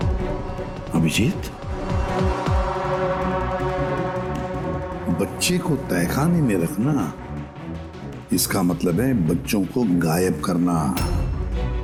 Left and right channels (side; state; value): both; identical; correlation 1.00